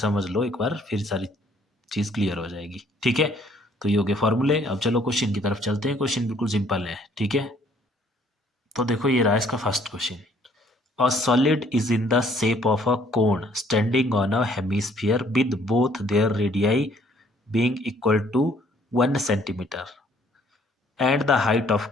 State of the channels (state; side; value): normal; both; correlation 0.62